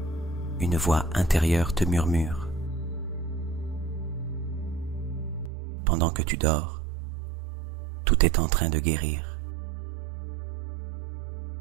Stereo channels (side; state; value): left; drops out; at 5.5 s